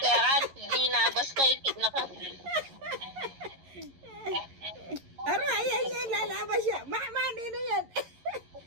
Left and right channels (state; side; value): late; left; 11 ms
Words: Di na basta ikit na ka. Aro, ayan yan, lalabas siya. Manino yan.